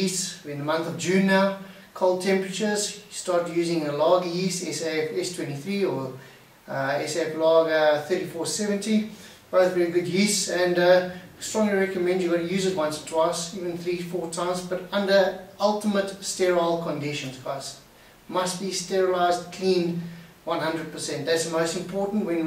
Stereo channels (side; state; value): both; identical; correlation 1.00